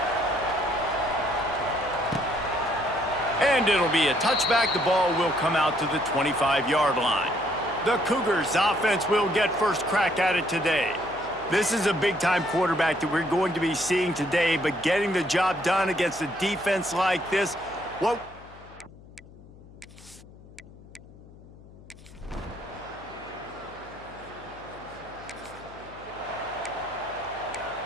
And it'll be a touchback. The ball will come out to the 25-yard line. The Cougars offense will get first crack at it today. This is a big-time quarterback that we're going to be seeing today, but getting the job done against a defense like this, well...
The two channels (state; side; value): noise; left; hum, 21 dB below the sound